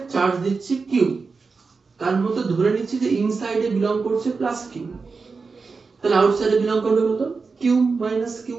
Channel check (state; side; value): quieter; left; 4.6 dB